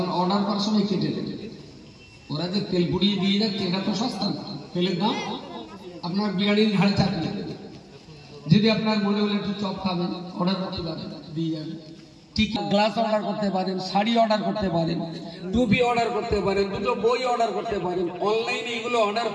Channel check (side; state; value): both; identical; correlation 1.00